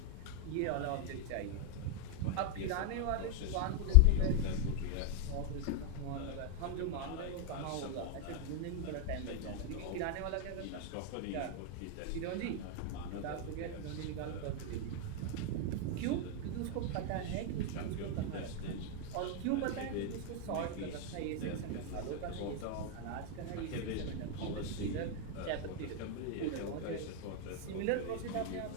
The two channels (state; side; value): different; both; correlation 0.00